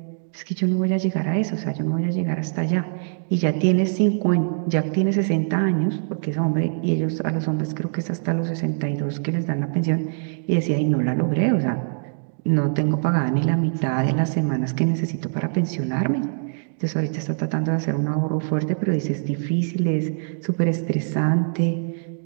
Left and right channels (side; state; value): left; silent; digital silence